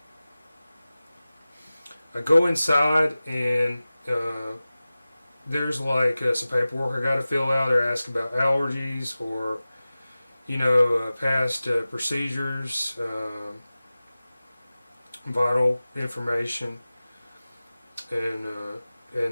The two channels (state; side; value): inverted; both; correlation -0.97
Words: I go inside and there's like some paperwork I got to fill out. They're asking about allergies or past procedures, vital information, and